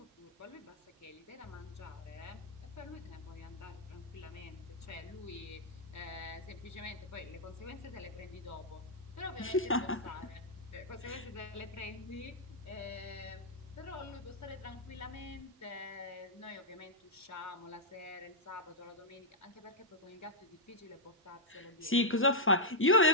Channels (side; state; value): both; normal; correlation -0.06